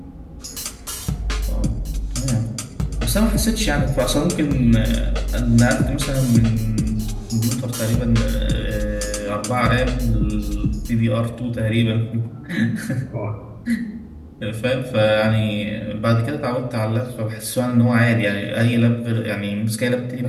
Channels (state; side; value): identical; both; correlation 1.00